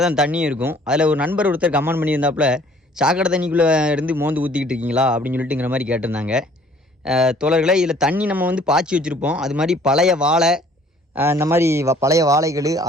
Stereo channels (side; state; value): both; normal; correlation 0.56